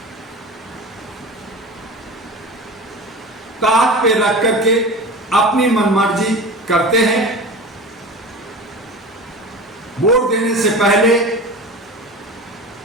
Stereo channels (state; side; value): normal; both; correlation 0.32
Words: ताक पे रख करके अपनी मनमर्जी करते हैं। वोट देने से पहले